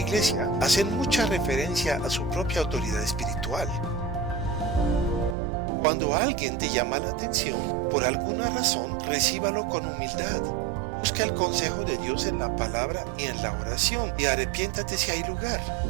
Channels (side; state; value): left; drops out; at 5.4 s